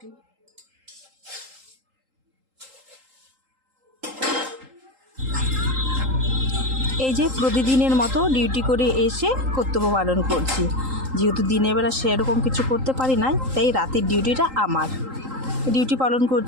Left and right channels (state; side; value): late; left; 3.8 ms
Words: এই যে প্রতিদিনের মতো ডিউটি করে এসে কর্তব্য পালন করছি। যেহেতু দিনের বেলা সেরকম কিছু করতে পারি না, তাই রাতের ডিউটিটা আমার। ডিউটি পালন